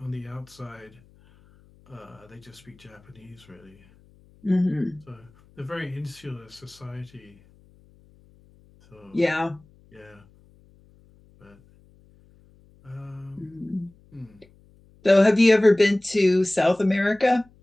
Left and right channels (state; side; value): noise; left; hum, 29 dB below the sound